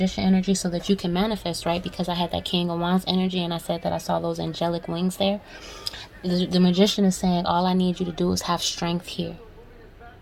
energy, so that you can manifest, right? Because I had that King of Wands energy and I said that I saw those angelic wings there. The Magician is saying, all I need you to do is have strength here.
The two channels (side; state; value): both; identical; correlation 1.00